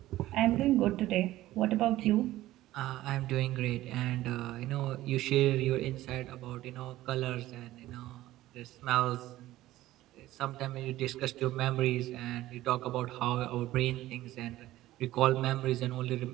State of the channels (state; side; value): quieter; left; 15.6 dB